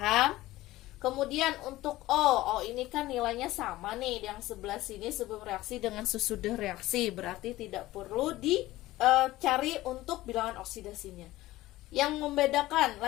Kemudian untuk O ini kan nilainya sama nih, yang sebelah sini sebelum reaksi dengan sesudah reaksi, berarti tidak perlu dicari untuk bilangan oksidasinya. Yang membedakan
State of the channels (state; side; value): quieter; right; 17.1 dB